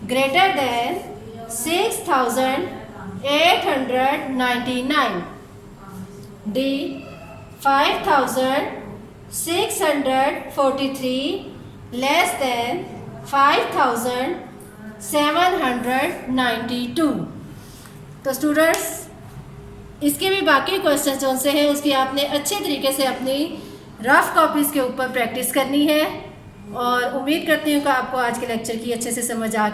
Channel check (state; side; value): identical; both; correlation 1.00